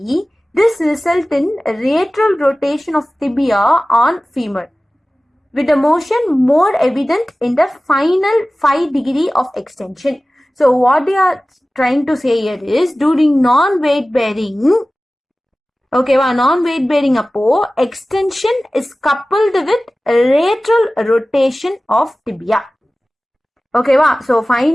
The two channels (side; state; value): both; normal; correlation 0.97